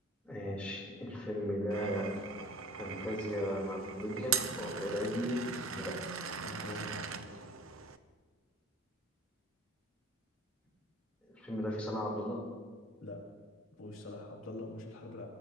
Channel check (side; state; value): both; normal; correlation 0.46